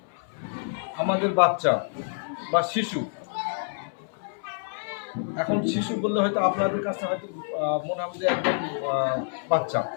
আমাদের বাচ্চা বা শিশু। এখন শিশু বললে হয়তো আপনাদের কাছে হয়তো মনে হবে যে একদম বাচ্চা,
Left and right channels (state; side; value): silent; right; 57 dB below the other